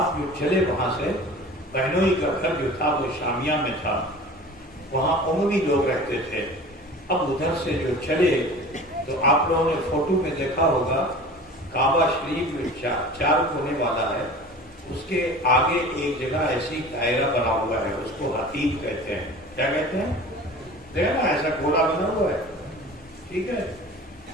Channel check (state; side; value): normal; both; correlation 0.40